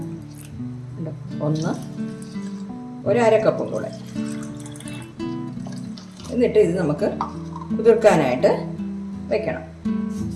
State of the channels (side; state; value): both; identical; correlation 1.00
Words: 1 1/2 കപ്പും കൂടെ. എന്നിട്ട് ഇത് നമുക്ക് കുതിർക്കാനായിട്ട് വെക്കണം.